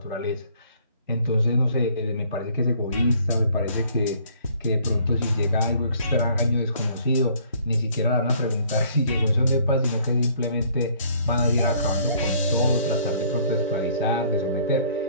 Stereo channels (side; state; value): both; inverted; correlation -0.59